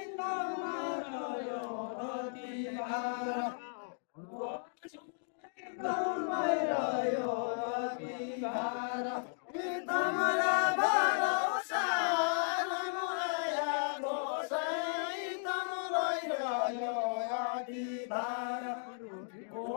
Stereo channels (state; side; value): silent; right; digital silence